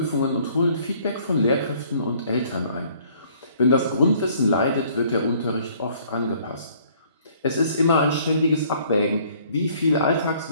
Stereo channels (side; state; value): both; inverted; correlation -0.59